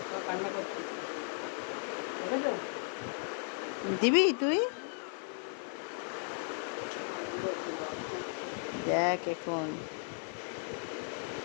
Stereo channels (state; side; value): silent; right; 54 dB below the other